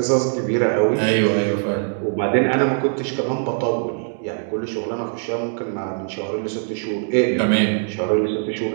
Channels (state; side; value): silent; left; 65 dB below the other